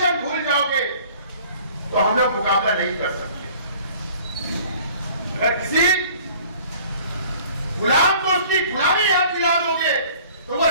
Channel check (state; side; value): inverted; both; correlation -0.51